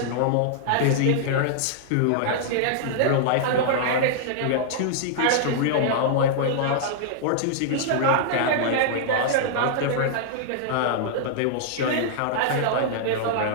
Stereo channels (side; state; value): both; different; correlation -0.01